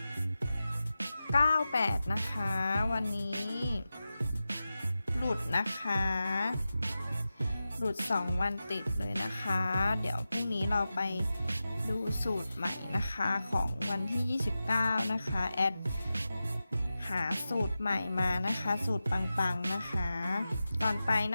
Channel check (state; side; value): inverted; both; correlation -0.93